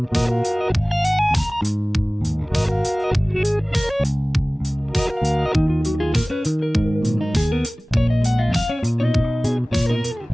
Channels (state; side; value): normal; both; correlation 0.98